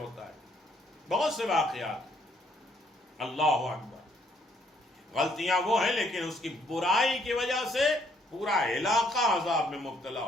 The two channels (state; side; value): normal; both; correlation 0.68